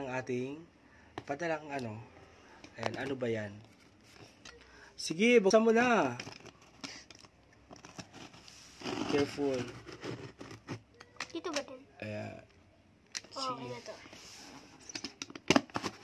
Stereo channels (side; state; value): both; identical; correlation 1.00